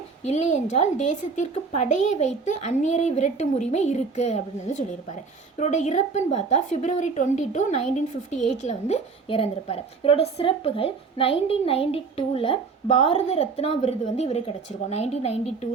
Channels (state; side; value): quieter; left; 4.8 dB